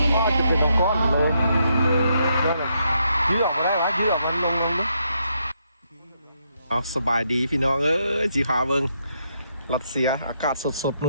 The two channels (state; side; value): inverted; both; correlation -0.77